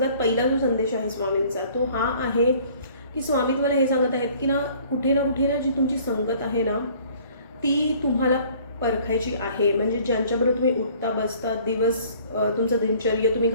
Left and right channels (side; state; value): both; inverted; correlation -0.54